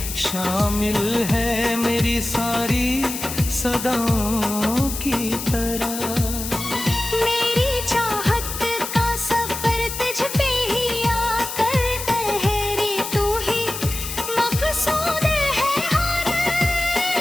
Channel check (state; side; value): noise; left; hiss, 7 dB below the sound